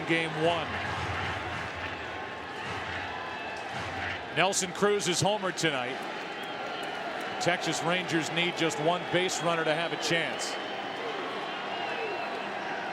Game 1. Nelson Cruz is homered tonight. Texas Rangers need just 1 base runner to have a chance.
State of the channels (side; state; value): both; identical; correlation 1.00